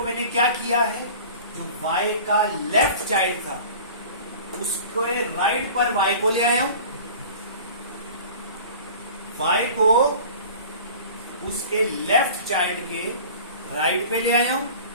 मैंने क्या किया है, जो y का लेफ्ट चाइल्ड था उसके राइट पर y को ले आया हूं, y को उसके लेफ्ट चाइल्ड के राइट पे ले आया हूं,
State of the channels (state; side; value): inverted; both; correlation -0.41